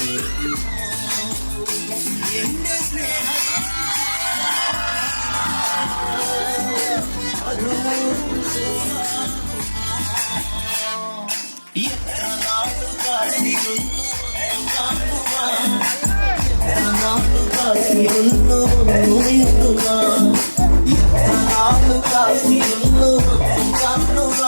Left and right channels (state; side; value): inverted; both; correlation -1.00